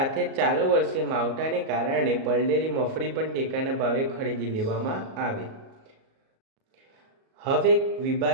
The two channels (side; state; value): left; late; 37 ms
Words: ચાલુ વર્ષે માવઠાને કારણે પલળેલી મગફળી પણ ટેકાના ભાવે ખરીદી લેવામાં આવે। હવે